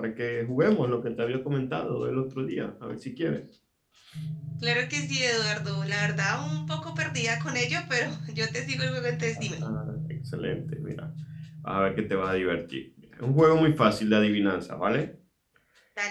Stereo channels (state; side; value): identical; both; correlation 1.00